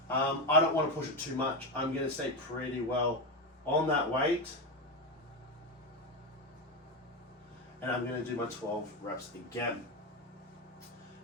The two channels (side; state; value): both; normal; correlation 0.13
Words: I don't want to push it too much. I'm going to stay pretty well on that weight. And I'm going to do my 12 reps again.